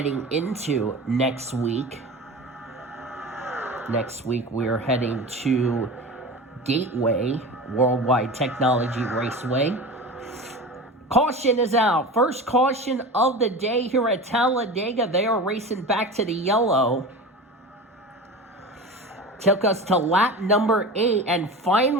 into next week. Next week, we're heading to Gateway Worldwide Technology Raceway. Caution is out. First caution of the day here at Talladega. They are racing back to the yellow. took us to lap number 8, and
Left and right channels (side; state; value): both; normal; correlation 0.31